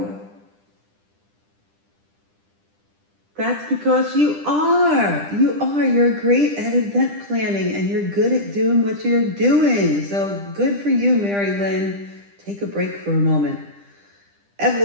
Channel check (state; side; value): late; left; 10 ms